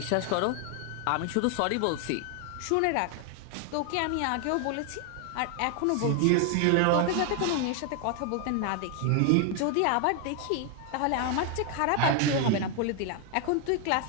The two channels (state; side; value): different; both; correlation 0.01